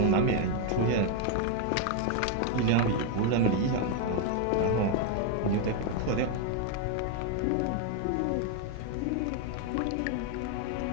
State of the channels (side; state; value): both; different; correlation 0.01